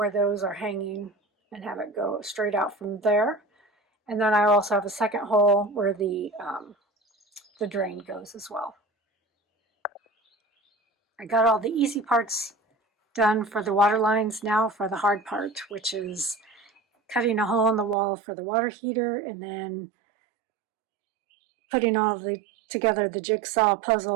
those are hanging and have it go straight out from there. And then I also have a second hole where the drain goes as well. I got all the easy parts done for the water lines. Now for the hard part, which is cutting a hole in the wall for the water heater and then putting all together the jigsaw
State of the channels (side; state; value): left; drops out; at 17.9 s